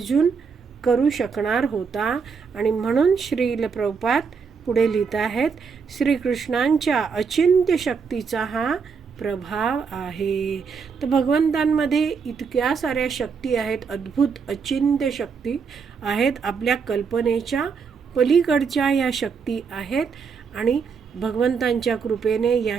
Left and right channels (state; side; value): quieter; left; 5.7 dB